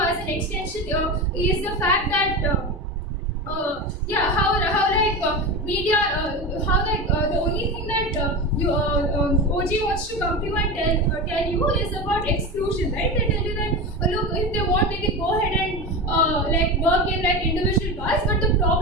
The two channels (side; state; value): both; normal; correlation 0.23